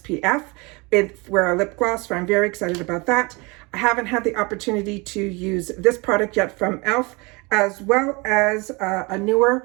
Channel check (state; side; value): quieter; left; 27.2 dB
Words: for a lip gloss, so I'm very excited about that. I haven't had the opportunity to use this product yet from e.l.f., as well as a